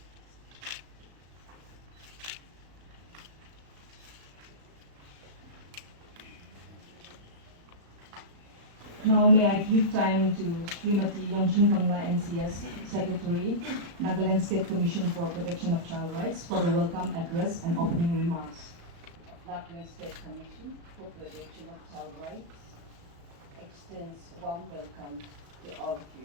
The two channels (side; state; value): left; late; 35 ms